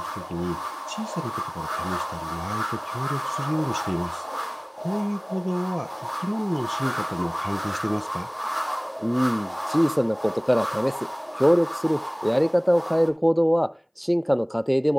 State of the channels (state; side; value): identical; both; correlation 1.00